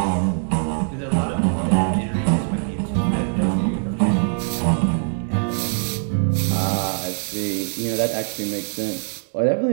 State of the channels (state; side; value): silent; left; digital silence